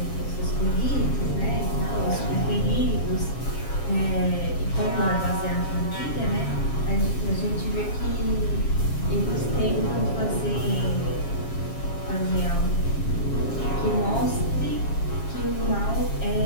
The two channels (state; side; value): late; right; 7.4 ms